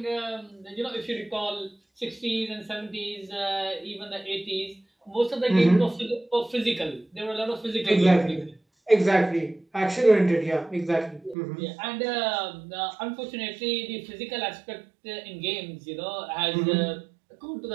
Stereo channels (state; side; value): drops out; left; at 11.4 s